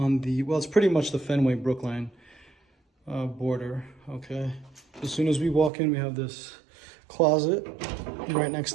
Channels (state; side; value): drops out; left; at 5.7 s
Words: the, well, it's pretty much the Fenway Brookline border. Okay, as soon as we walk in, we have this closet right next